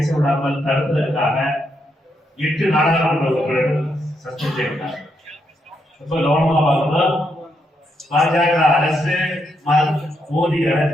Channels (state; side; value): normal; both; correlation 0.79